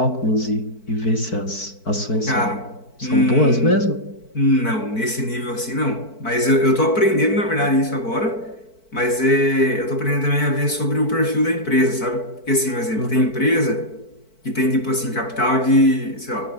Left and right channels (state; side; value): late; right; 4.5 ms